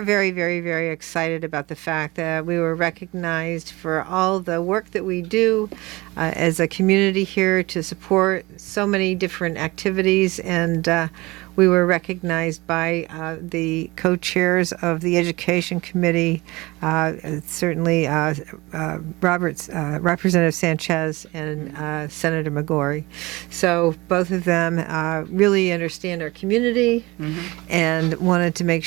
very, very, very excited about the fact that we were recognized for all the work that we do as a community here to support so many different activities, and we were recognized by the co-chairs of the Education Committee, certainly Representative Sanchez and Senator McGorry. So both of them really understand our community and wanted to make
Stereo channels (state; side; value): quieter; left; 22.1 dB